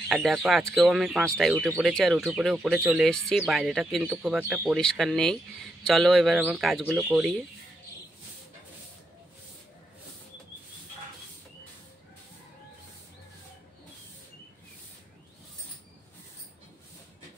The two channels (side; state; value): both; normal; correlation 0.82